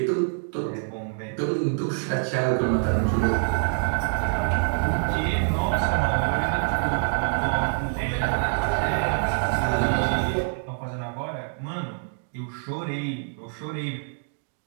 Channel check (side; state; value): left; silent; digital silence